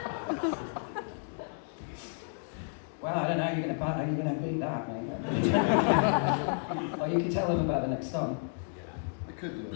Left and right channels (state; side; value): silent; right; digital silence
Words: Well, I don't know how you're going to beat that, mate. Or you can tell them about the next song. I could do it, I